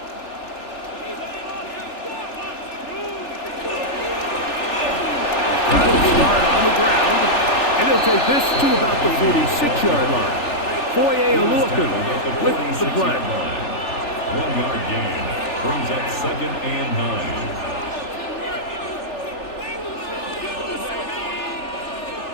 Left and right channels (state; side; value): late; right; 3.4 ms